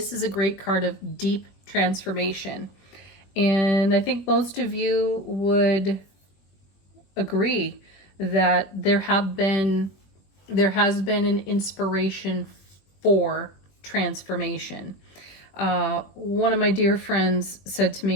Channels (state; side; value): late; right; 21 ms